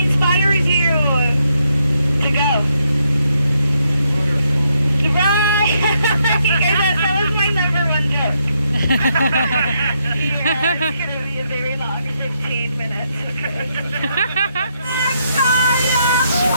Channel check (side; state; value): both; inverted; correlation -0.77